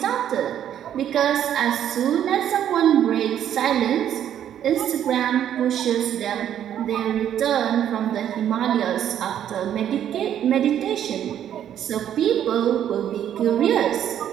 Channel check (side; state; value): left; quieter; 10.2 dB